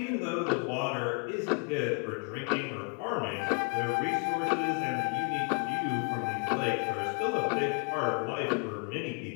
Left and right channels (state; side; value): quieter; right; 35.4 dB